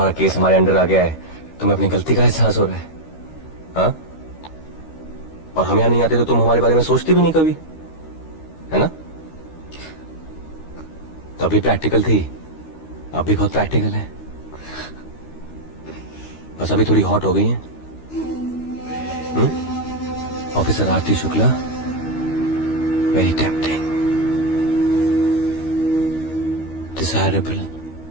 केस हमारे अंडर आ गया है तुम्हें अपनी गलती का एहसास हो रहा है। हाँ? और हम यहाँ नहीं आते तो तुम हमारे बारे में सोचती भी नहीं कभी, है ना? तभी प्रैक्टिकल थी, अब भी बहुत प्रैक्टिकल है। बस अभी थोड़ी हॉट हो गई है। Officer Aarti Shukla, very tempting, desirable.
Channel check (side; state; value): right; late; 13 ms